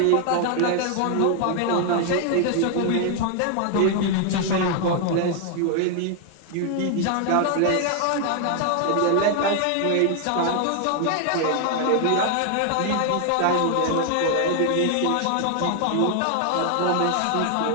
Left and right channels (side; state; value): both; different; correlation 0.00